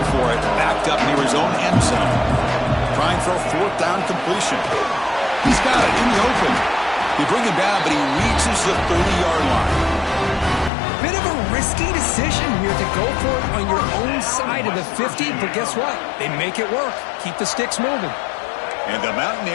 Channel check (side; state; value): right; drops out; at 10.7 s